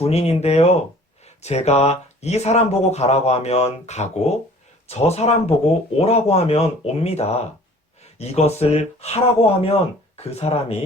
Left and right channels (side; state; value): both; normal; correlation 0.50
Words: 제가 이 사람 보고 가라고 하면 가고 저 사람 보고 오라고 하면 옵니다. 이것을 하라고 하면 그